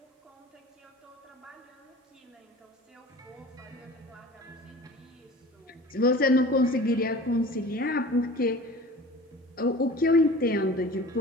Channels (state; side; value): normal; both; correlation 0.40